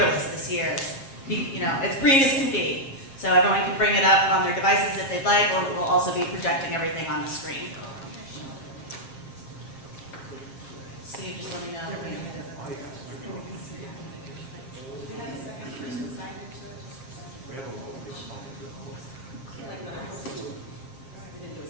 this year. As green as can be. So everyone can bring it up on their devices if they'd like, or we'll also be projecting everything on the screen. Steve, just let me know.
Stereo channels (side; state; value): right; late; 7.4 ms